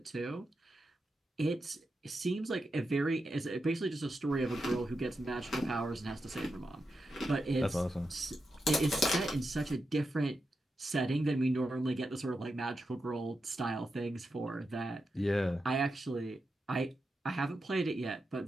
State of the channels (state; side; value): normal; both; correlation 0.88